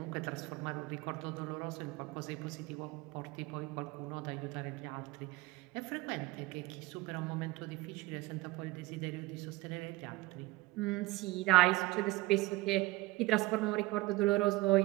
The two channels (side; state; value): left; quieter; 19.7 dB